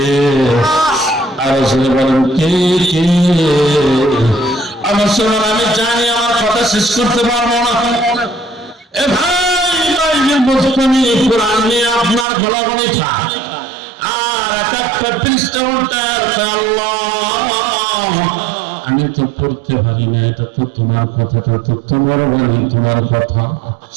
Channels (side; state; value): left; drops out; at 12.2 s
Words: আর বলেন কে কে? আমার সময় আমি জানি আমার কথা শেষ করতে পারবো না। এ ভাই মুসলিম কোরআন নিয়ে আপনার গলাগলি খায় আর একটা পৃষ্ঠা উল্টায় আল্লাহ আমি তো পড়তে পারি না, এটা তো তোমার কথাটা তো তোমার বাণী, তোমার কথা।